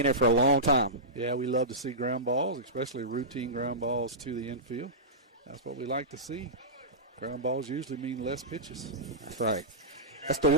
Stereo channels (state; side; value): normal; both; correlation -0.16